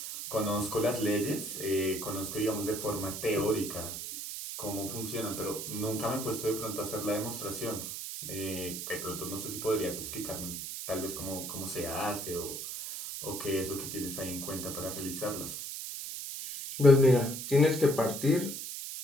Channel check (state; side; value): noise; right; hiss, 6 dB below the sound